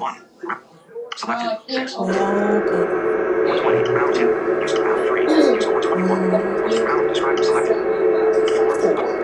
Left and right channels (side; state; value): both; identical; correlation 1.00